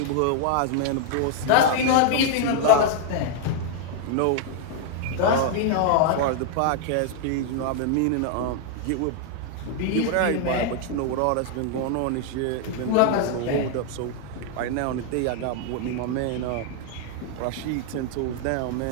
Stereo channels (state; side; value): different; both; correlation 0.00